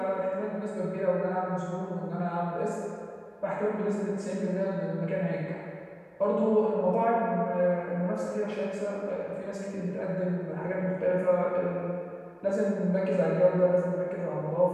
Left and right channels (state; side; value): identical; both; correlation 1.00